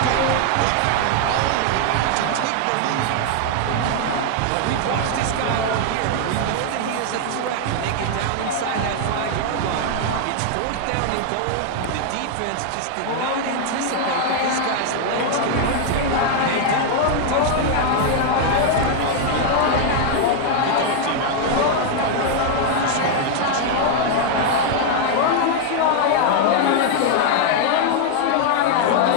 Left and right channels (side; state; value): both; different; correlation 0.00